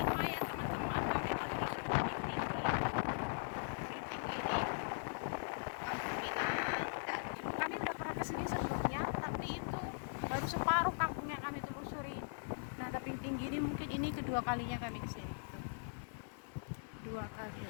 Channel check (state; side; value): silent; right; 51 dB below the other